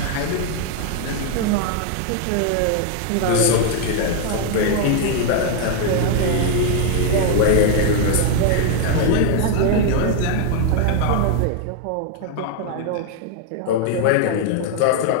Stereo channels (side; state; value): both; different; correlation 0.00